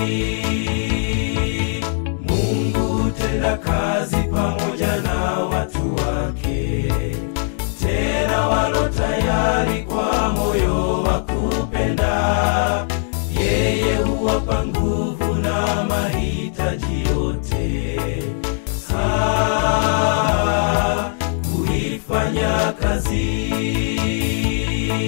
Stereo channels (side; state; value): right; silent; digital silence